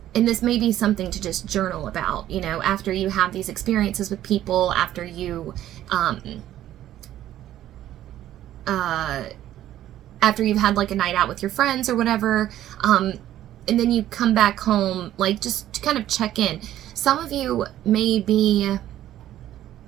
this may be something to just journal about, you know, after you have these experiences with people, after you've had like a night out with your friends or whatever, and then you come back home, like just to kind of check in. Some of you may be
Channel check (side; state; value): left; quieter; 12.7 dB